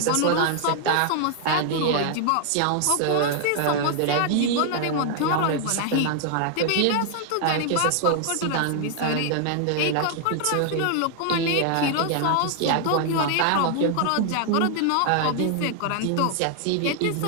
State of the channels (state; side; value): different; both; correlation 0.00